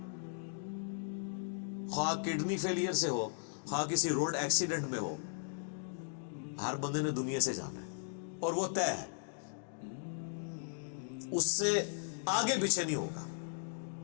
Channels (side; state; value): right; silent; digital silence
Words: خواہ کڈنی فیلئر سے ہو، خواہ کسی روڈ ایکسیڈنٹ میں ہو، ہر بندے نے دنیا سے جانا ہے اور وہ طے ہے، اس سے آگے پیچھے نہیں ہوگا۔